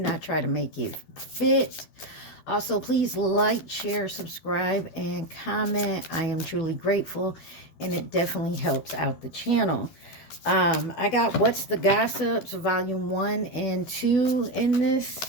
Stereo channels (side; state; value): right; late; 12 ms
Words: try to make it fit. Also, please like, share, subscribe, and comment. I am truly grateful, and it definitely helps out the channel. I got What's the Gossips, Volume 1 and 2 in this.